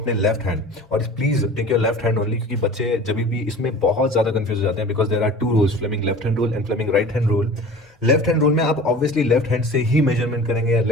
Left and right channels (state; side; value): normal; both; correlation 0.40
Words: लेफ्ट हैंड, और please take your left hand only, क्योंकि बच्चे जब भी इसमें बहुत ज्यादा कंफ्यूज हो जाते हैं because there are two rules, Fleming left hand rule and Fleming right hand rule. Left hand rule में आप ऑब्वियसली लेफ्ट हैंड से ही मेजरमेंट करेंगे या